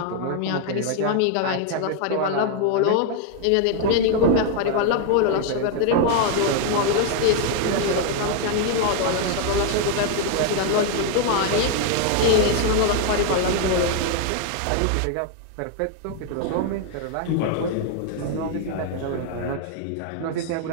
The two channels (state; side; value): different; both; correlation 0.00